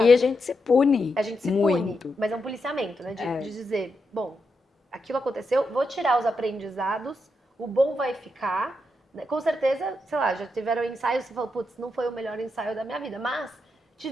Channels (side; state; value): both; normal; correlation 0.84